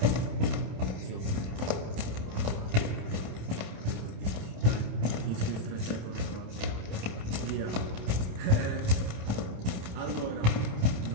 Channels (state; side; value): late; left; 28 ms